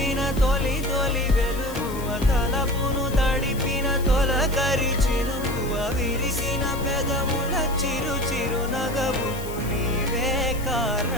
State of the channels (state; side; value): noise; left; hiss, 15 dB below the sound